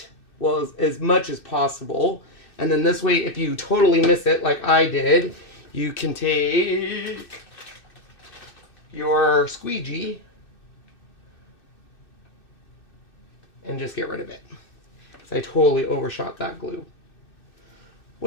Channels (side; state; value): right; late; 2.6 ms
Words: well, as much as possible. And then this way, if you totally miss it like I did, you can take your squeegee and just get rid of it. So I totally overshot that glue.